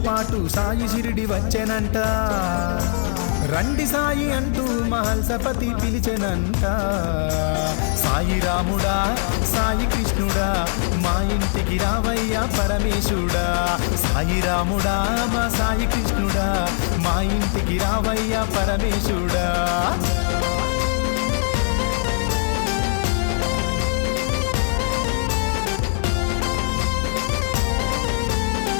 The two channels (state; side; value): silent; right; 65 dB below the other